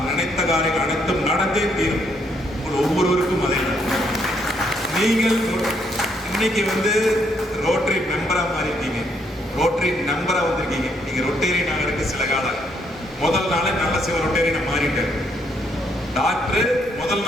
நினைத்த காரியங்கள் அனைத்தும் நடந்தே தீரும். ஒவ்வொருவருக்கும் அதே. நீங்கள் இன்னைக்கு வந்து ரோட்டரி மெம்பரா மாறி இருக்கீங்க, ரோட்டரி நம்பரா வந்திருக்கீங்க. நீங்க ரொட்டேரியன் ஆகிறதுக்கு சில காலம், முதல் நாளே நல்ல சிவ ரொட்டேரியனை மாறிட்டாரு. டாக்டர் முதல்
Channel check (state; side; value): normal; both; correlation 0.72